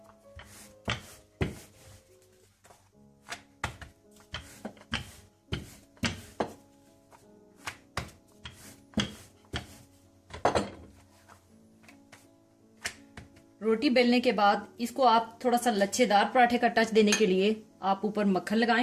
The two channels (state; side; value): identical; both; correlation 1.00